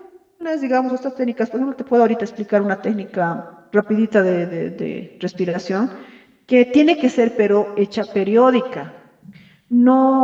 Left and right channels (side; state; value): both; identical; correlation 1.00